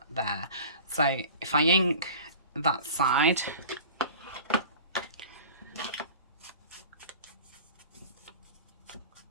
there. So if I ink that side, I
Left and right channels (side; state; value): both; inverted; correlation -0.40